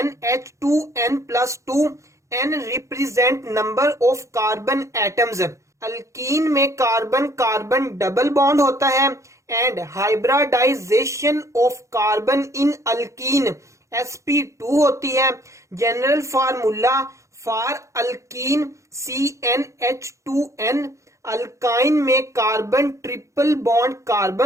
n represent number of carbon atoms. Alkene में carbon carbon double bond होता है and hybridisation of carbon in alkene sp2 होती है. General formula for alkene CnH2n. Alkyne में carbon triple bond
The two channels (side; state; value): left; late; 0.15 ms